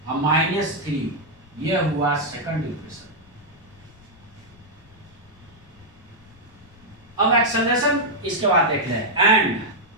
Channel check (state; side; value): noise; left; rumble, 26 dB below the sound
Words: और -3, ये हुआ सेकंड इक्वेशन। अब एक्सेलरेशन इसके बाद देख ले, एंड